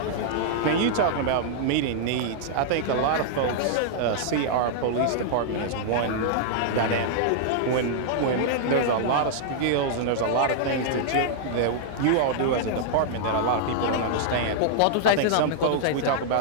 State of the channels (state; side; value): different; both; correlation -0.01